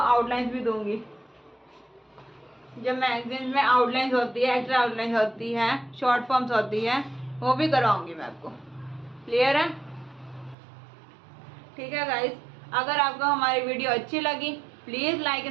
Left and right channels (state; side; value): drops out; left; at 10.6 s